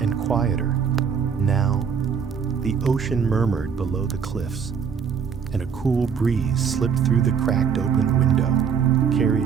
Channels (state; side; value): quieter; left; 6.8 dB